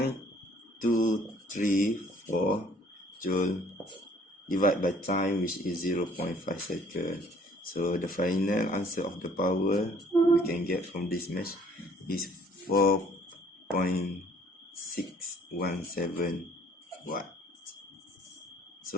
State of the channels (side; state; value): both; normal; correlation 0.58